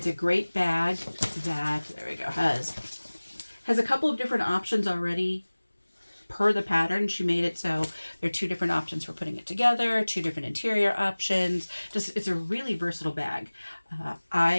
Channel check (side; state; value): both; inverted; correlation -1.00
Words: a great bag that, there we go, has a couple of different options already per the pattern. She made it so there are two different options for putting it together, two different interior options. It's a really versatile bag.